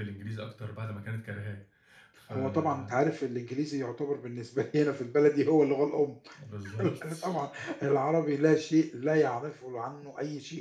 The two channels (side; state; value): both; identical; correlation 1.00